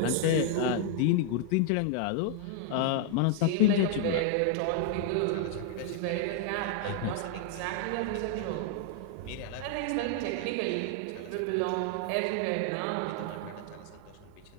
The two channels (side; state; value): both; different; correlation 0.00